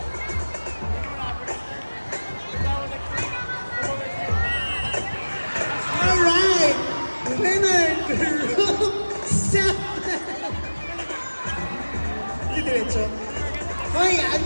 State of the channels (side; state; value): both; inverted; correlation -1.00